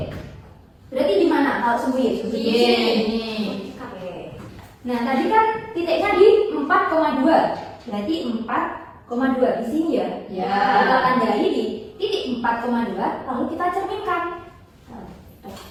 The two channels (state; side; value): identical; both; correlation 1.00